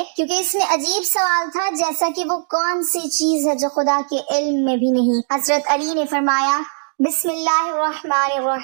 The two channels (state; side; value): silent; left; digital silence